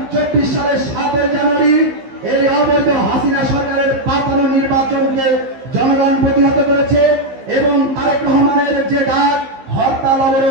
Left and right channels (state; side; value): late; left; 15 ms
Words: সালের 7 জানুয়ারি এই অবৈধ হাসিনা সরকারের পাতানো নির্বাচনকে জনগণ প্রতিহত করেছে এবং তারেক রহমানের যে ডাক হরতাল